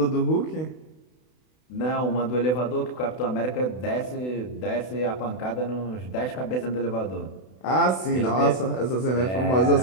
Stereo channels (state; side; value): late; right; 32 ms